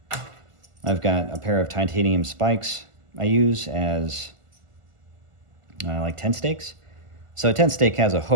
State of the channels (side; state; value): left; late; 1.5 ms